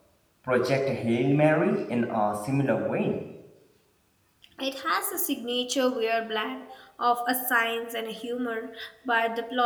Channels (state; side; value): identical; both; correlation 1.00